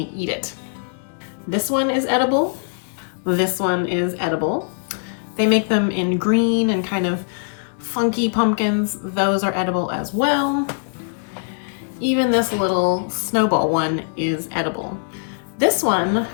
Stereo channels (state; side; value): silent; right; digital silence